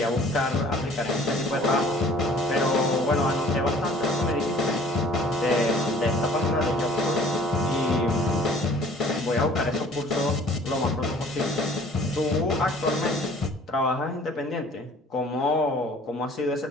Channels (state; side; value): normal; both; correlation 0.52